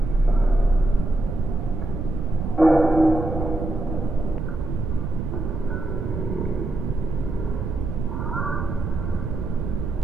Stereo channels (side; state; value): right; noise; rumble, 4 dB below the sound